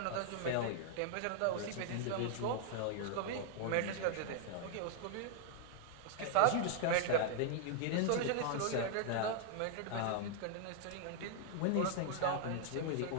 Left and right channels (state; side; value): different; both; correlation -0.01